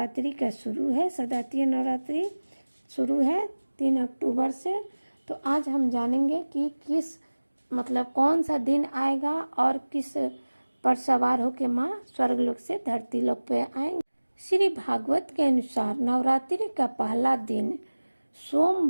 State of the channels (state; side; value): inverted; both; correlation -1.00